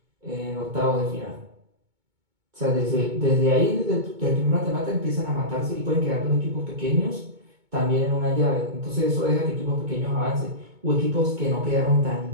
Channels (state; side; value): late; left; 2.2 ms